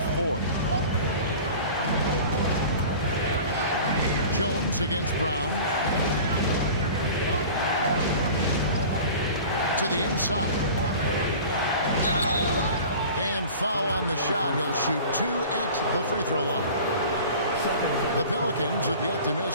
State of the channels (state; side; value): inverted; both; correlation -0.40